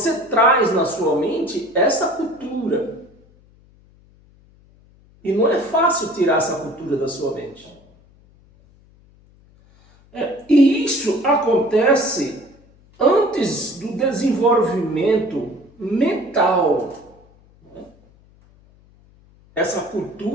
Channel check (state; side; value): noise; left; hum, 29 dB below the sound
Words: traz na sua mente essa cultura. E não é fácil tirar essa cultura da sua mente. E isso acontece antes do desenvolvimento mental. Essa